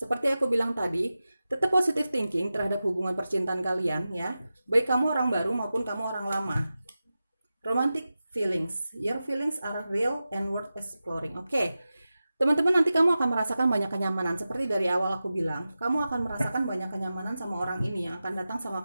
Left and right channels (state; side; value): inverted; both; correlation -0.94